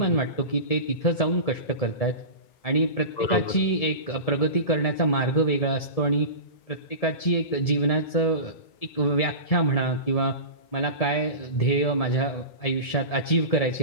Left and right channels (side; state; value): right; late; 1.7 ms